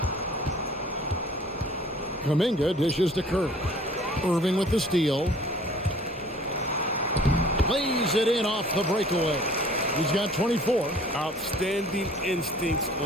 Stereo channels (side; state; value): both; normal; correlation 0.51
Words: Kuminga dishes to Curry. Irving with the steal. Lays it in off the breakaway. He's got 24. Outstanding instincts